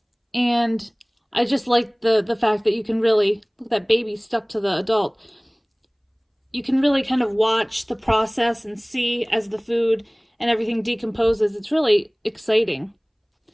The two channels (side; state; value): both; identical; correlation 1.00